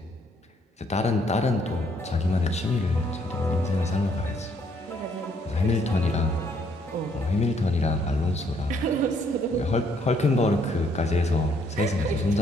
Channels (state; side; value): normal; both; correlation 0.68